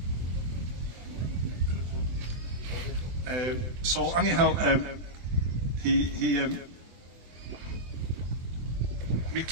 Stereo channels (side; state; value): left; late; 24 ms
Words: So anyhow, Mick